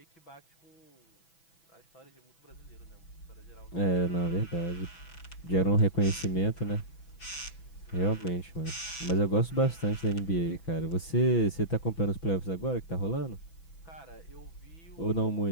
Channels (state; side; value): late; right; 6.1 ms